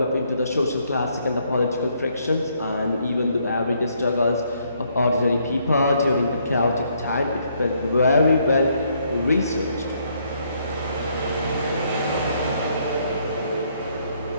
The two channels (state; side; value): inverted; both; correlation -0.71